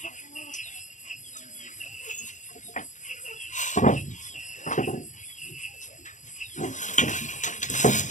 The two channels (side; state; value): right; late; 0.36 ms